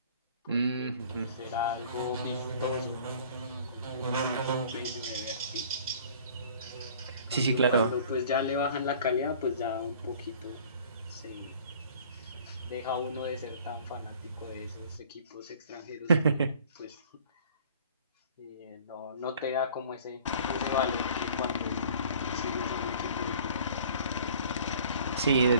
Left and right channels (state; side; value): inverted; both; correlation -0.50